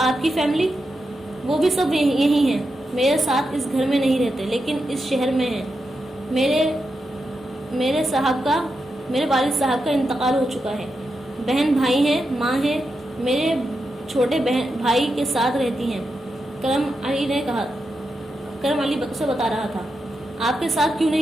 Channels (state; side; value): normal; both; correlation 0.87